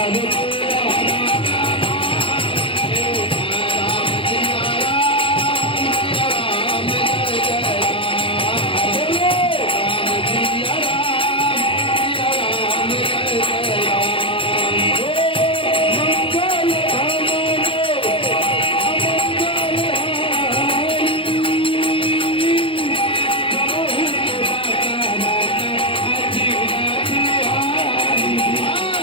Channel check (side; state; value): right; late; 0.25 ms